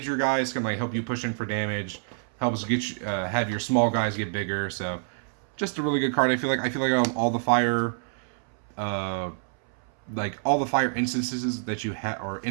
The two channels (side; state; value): left; silent; 60 dB below the other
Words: your guys, can like help you push in for damage, helps get you, have your small guys get bigger. So just a really good card. I feel like all the fire, all the fire instances that you have or